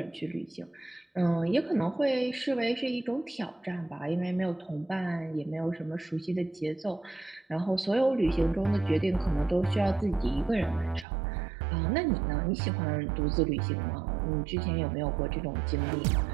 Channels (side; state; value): left; drops out; at 11.1 s